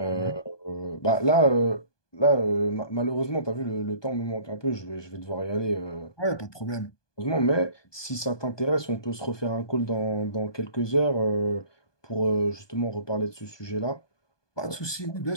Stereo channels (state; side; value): late; right; 1.2 ms